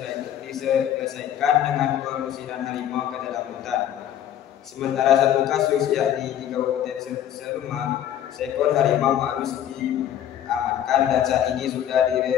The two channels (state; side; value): quieter; right; 10.8 dB